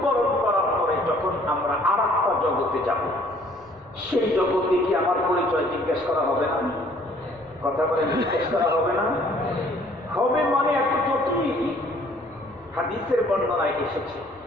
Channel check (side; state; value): both; normal; correlation 0.58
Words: করার পরে যখন আমরা আর একটা জগতে যাব, সেই জগতে কি আমার পরিচয় জিজ্ঞেস করা হবে না? কথা বলে জিজ্ঞেস করা হবে না? হবে মানে এত জটিল। হাদিসের বর্ণনায় এসেছে,